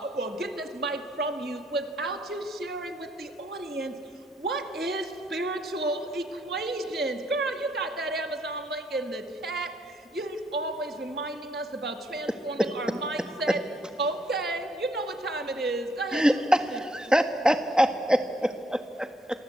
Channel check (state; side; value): normal; both; correlation 0.71